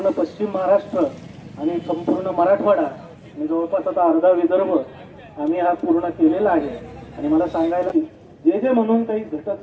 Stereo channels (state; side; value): identical; both; correlation 1.00